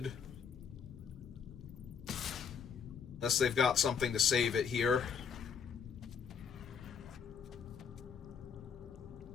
Unless they've got something to save it here.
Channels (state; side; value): quieter; right; 6.7 dB